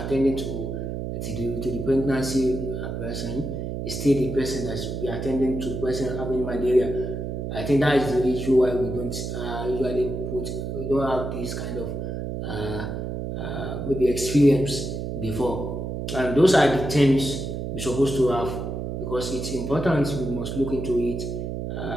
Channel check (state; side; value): noise; right; hum, 4 dB below the sound